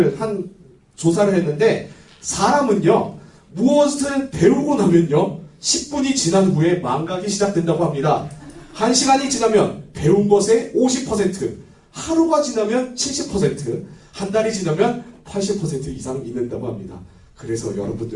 했는데 사람은요 무엇을 배우고 나면요 10분이 지난 후에 망각이 시작된다고 합니다. 1시간이 지나면 배운 것의 50%, 하루가 지나면 70%, 한 달이 지나면 80% 이상 잊는다고 합니다. 그래서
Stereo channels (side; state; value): both; identical; correlation 1.00